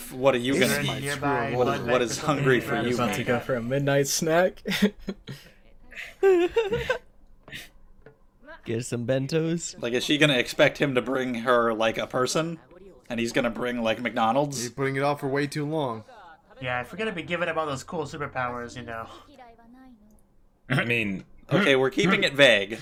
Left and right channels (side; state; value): both; identical; correlation 1.00